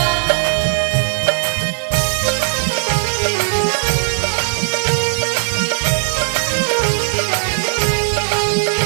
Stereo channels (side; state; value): left; silent; 68 dB below the other